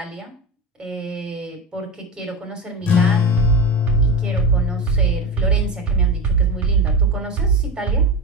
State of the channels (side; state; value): both; normal; correlation 0.22